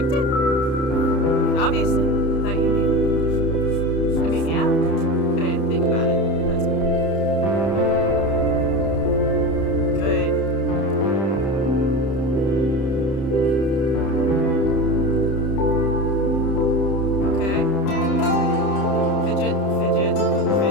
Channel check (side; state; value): right; late; 30 ms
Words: it? Obviously. Thought you knew. I mean, yeah. I didn't think about it. That's cool. Good. Okay. Fidget, fidget,